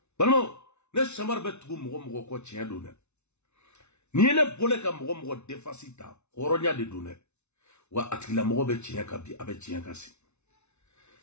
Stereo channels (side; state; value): right; late; 0.81 ms